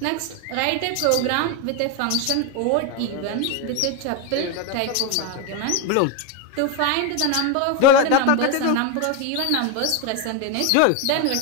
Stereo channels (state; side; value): different; both; correlation 0.02